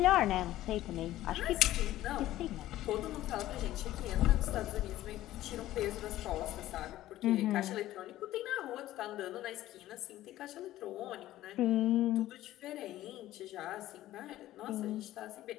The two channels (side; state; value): right; quieter; 14.6 dB